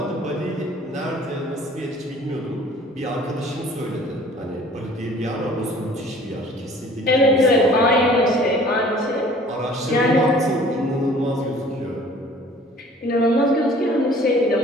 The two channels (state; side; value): normal; both; correlation 0.51